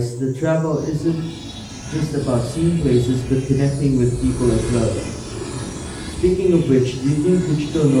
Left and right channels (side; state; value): both; identical; correlation 1.00